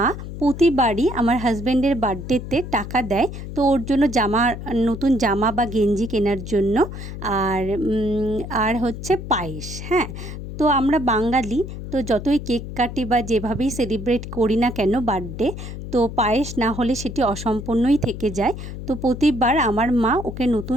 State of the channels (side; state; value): left; noise; hum, 9 dB below the sound